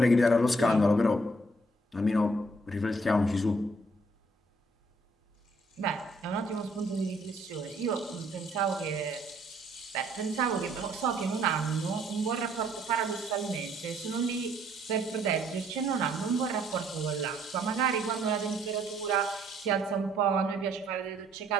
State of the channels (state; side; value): normal; both; correlation 0.64